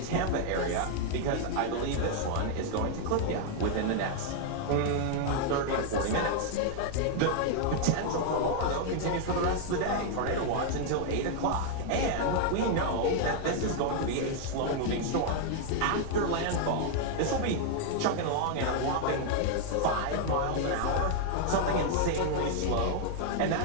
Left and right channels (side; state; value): both; different; correlation 0.00